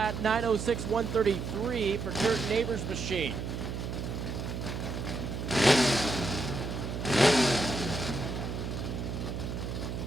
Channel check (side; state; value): right; noise; hum, 4 dB below the sound